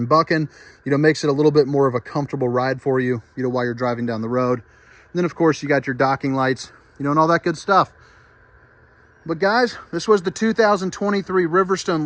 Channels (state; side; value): identical; both; correlation 1.00